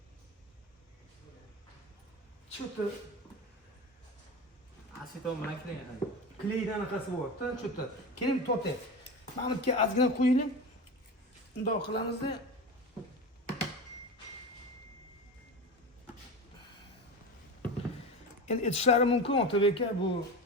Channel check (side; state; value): both; normal; correlation 0.26